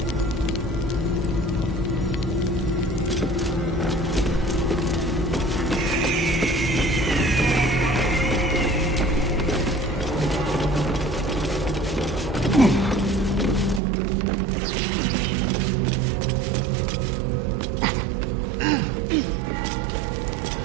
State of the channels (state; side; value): drops out; left; at 13.8 s